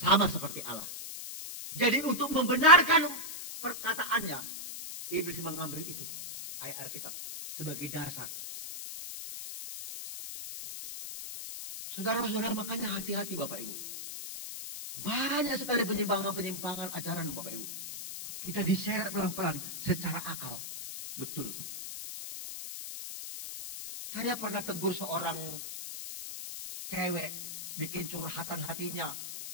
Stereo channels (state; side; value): noise; left; hiss, 8 dB below the sound